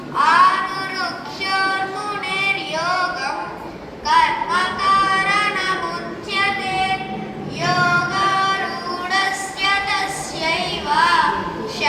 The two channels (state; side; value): identical; both; correlation 1.00